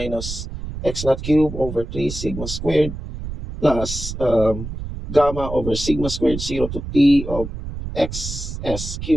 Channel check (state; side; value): noise; right; rumble, 8 dB below the sound